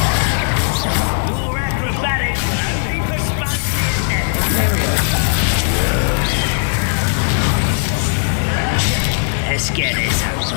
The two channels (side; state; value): right; silent; digital silence